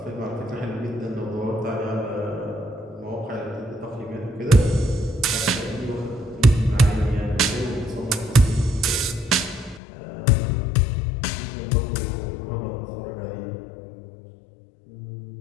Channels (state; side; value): drops out; right; at 9.8 s